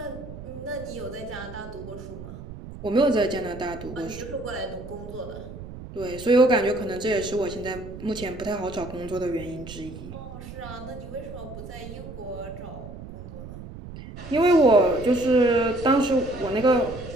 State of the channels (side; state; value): right; noise; rumble, 13 dB below the sound